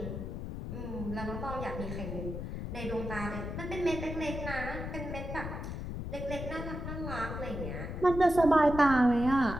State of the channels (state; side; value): noise; left; rumble, 6 dB below the sound